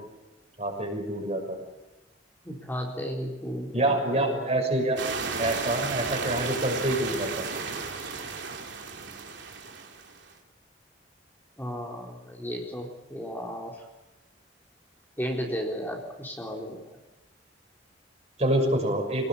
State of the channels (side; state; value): both; normal; correlation 0.29